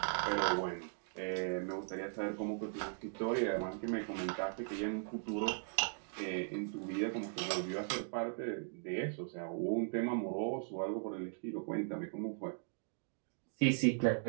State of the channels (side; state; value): left; silent; digital silence